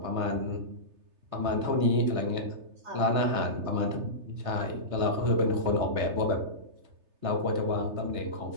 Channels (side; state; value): left; late; 3.3 ms